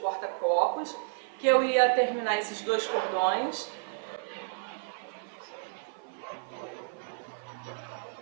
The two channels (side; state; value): left; silent; 55 dB below the other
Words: que eu ia terminar esses 2 cordões.